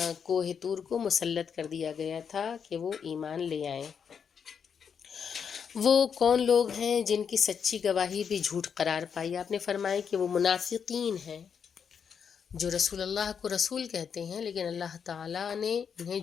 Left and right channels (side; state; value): right; quieter; 7.0 dB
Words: کوہ طور کو مسلط کر دیا گیا تھا کہ وہ ایمان لے آئیں۔ وہ کون لوگ ہیں جن کی سچی گواہی بھی جھوٹ قرار پائی؟ آپ نے فرمایا کہ وہ منافقین ہیں جو رسول اللہ کو رسول کہتے ہیں، لیکن اللہ تعالیٰ نے انہیں